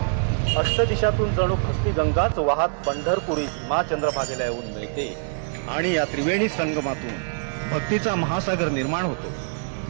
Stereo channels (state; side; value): silent; left; digital silence